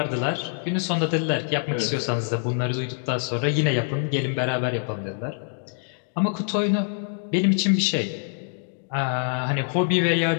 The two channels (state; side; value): silent; right; digital silence